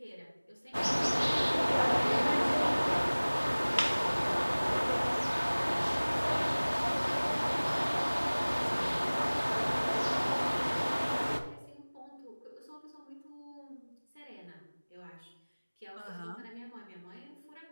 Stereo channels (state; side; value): inverted; both; correlation -1.00